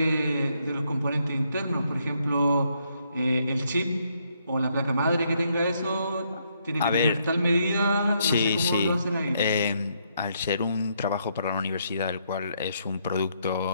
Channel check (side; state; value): both; inverted; correlation -0.74